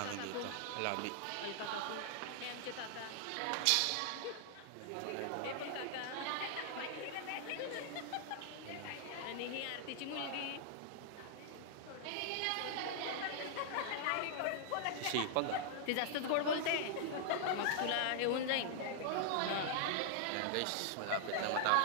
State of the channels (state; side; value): different; both; correlation -0.01